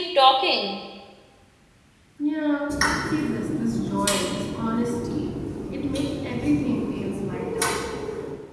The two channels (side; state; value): both; identical; correlation 1.00